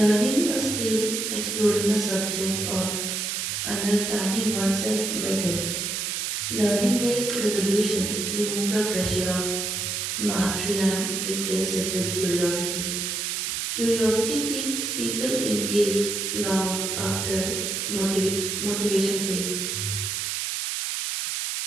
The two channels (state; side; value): noise; right; hiss, 1 dB below the sound